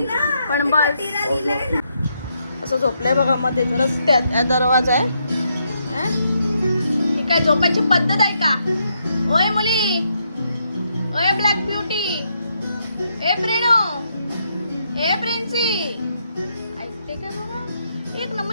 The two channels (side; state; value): both; inverted; correlation -0.78